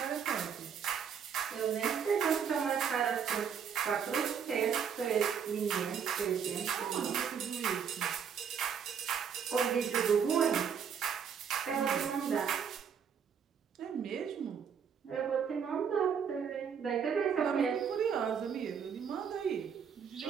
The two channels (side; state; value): left; quieter; 7.3 dB